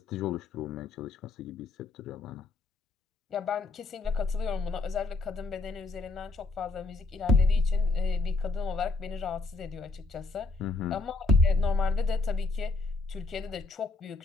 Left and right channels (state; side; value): quieter; right; 3.5 dB